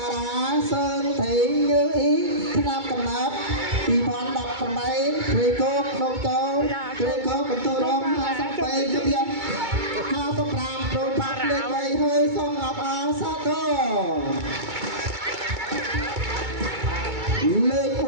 ារាសើថៃញើអ៊ីឆ្នាំកំណត់2018ព្រៃគោកដងទៅព្រៃគោកបន្ទូរង52គ្រា55ប្រូបាក់លេខ3ហើយសូមអបអរសាទរលេខ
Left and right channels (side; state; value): left; late; 2.2 ms